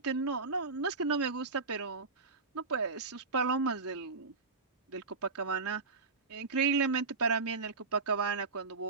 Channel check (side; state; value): left; quieter; 4.3 dB